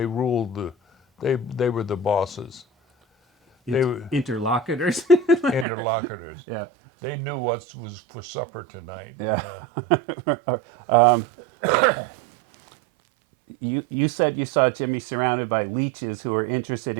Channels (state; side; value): drops out; left; at 5.7 s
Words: ruled they were the bosses. They were interlocutors. interlocutors. Yeah. They knew what was for supper tonight. Yeah. You said you saw Jimmy surrounded by leeches who were interested